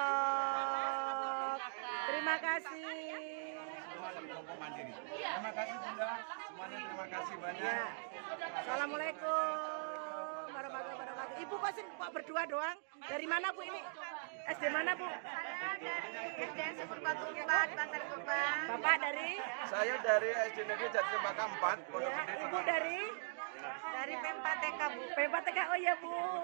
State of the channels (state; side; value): silent; left; digital silence